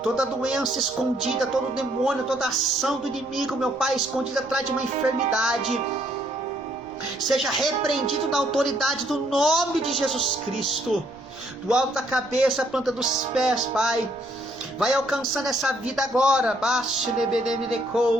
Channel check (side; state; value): right; noise; rumble, 25 dB below the sound